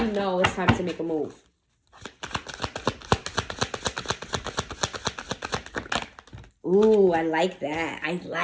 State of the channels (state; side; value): identical; both; correlation 1.00